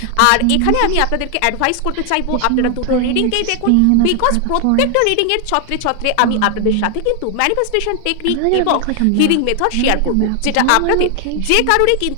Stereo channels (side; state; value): both; different; correlation 0.00